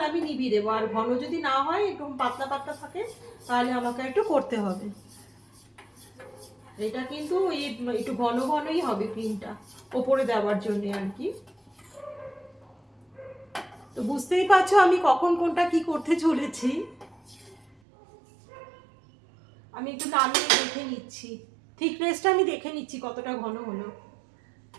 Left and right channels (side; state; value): left; drops out; at 17.8 s